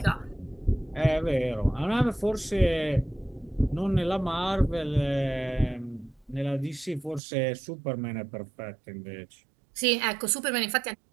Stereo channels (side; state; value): left; drops out; at 7.2 s